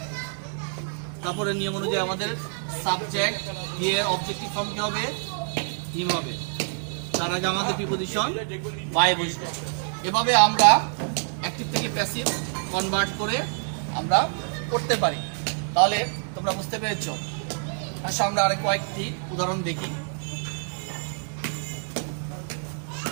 তারপরে নিয়ম অনুযায়ী আমাদের সাবজেক্ট দিয়ে অবজেক্টিভ ফর্ম কি হবে, হিম হবে। তার আগে আমাদের প্রিপজিশন বাই বসবে। এভাবে আমরা অ্যাক্টিভ থেকে প্যাসিভ কনভার্ট করে আমরা করতে পারি। তাহলে তোমরা বুঝতে পেরেছো। আচ্ছা, আমরা আরেক কয়েকটি উদাহরণ দেখি।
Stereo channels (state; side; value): silent; left; 61 dB below the other